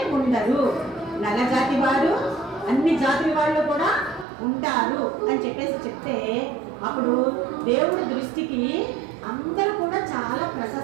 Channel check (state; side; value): drops out; left; at 4.2 s